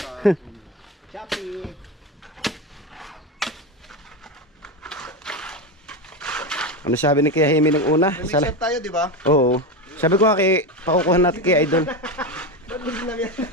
Shopee. Ano sabi ni Kuya Hemi nung una? Mixer tayo, di ba? Oo. Sabi ko nga pakukuhan natin kay Idol.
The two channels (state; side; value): normal; both; correlation 0.18